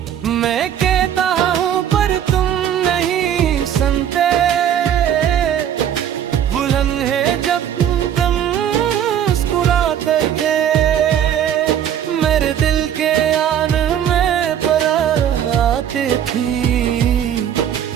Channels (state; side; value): quieter; left; 9.8 dB